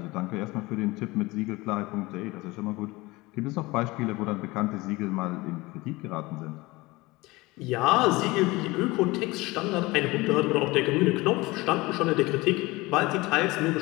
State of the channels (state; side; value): quieter; right; 21.8 dB